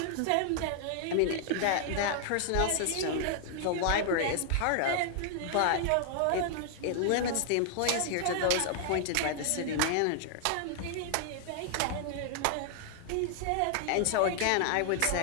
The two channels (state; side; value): different; both; correlation 0.00